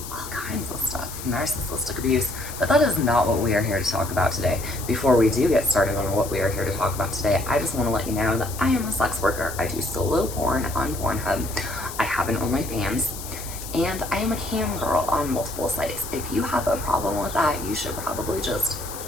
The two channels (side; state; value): left; noise; hiss, 11 dB below the sound